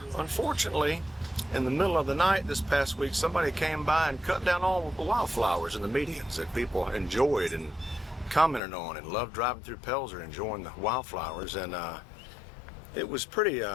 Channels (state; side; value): drops out; right; at 8.6 s